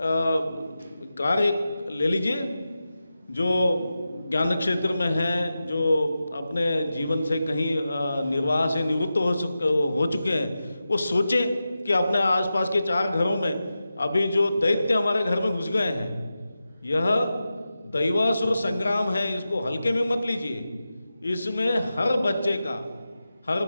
कार्य ले लीजिए जो ज्ञान क्षेत्र में हैं, जो अपने जीवन से कहीं निर्वाह से निवृत्त हो चुके हैं, वो सोचें कि अपने आसपास के 4 घरों में अभी जो दैत्य हमारे घर में घुस गए हैं, यह दैवासुर संग्राम है, इसको हल्के में मत लीजिए। इसमें हर बच्चे का, हर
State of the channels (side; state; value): both; inverted; correlation -0.92